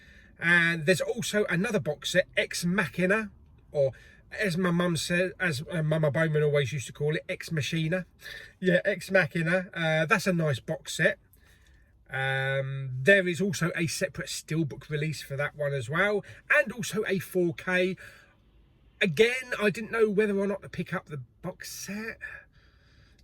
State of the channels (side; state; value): both; identical; correlation 1.00